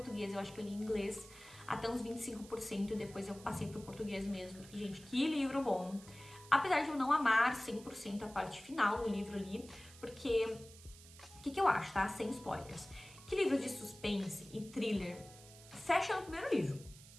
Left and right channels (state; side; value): noise; right; hiss, 19 dB below the sound